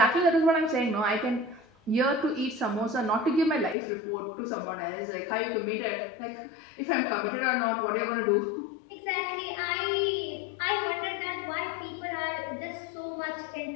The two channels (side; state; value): right; drops out; at 3.8 s